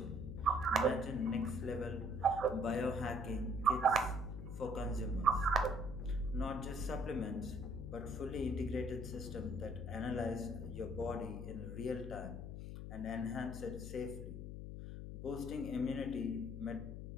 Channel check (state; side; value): noise; left; hum, 7 dB below the sound